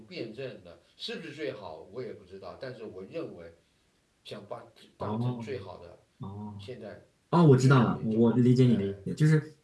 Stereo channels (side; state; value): both; identical; correlation 1.00